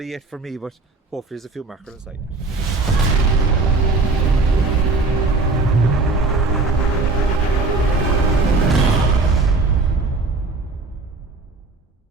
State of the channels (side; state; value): left; quieter; 3.5 dB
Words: yet for me, but hopefully there's a few mackerel inside.